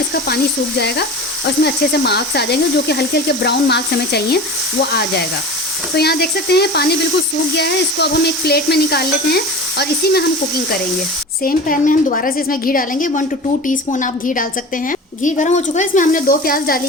पानी सूख जाएगा और इसमें अच्छे से मार्क्स आ जाएंगे, जो कि हल्के हल्के ब्राउन मार्क्स हमें चाहिए, वो आ जाएगा। तो यहाँ देख सकते हैं पानी बिल्कुल सूख गया है। इसको अब हम एक प्लेट में निकाल लेते हैं और इसी में हम कुकिंग करेंगे। सेम पैन में हम दोबारा से इसमें घी डालेंगे। 1 to 2 टीस्पून आप घी डाल सकते हैं। घी गर्म हो चुका है, इसमें हमने 2 प्याज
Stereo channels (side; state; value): both; normal; correlation 0.34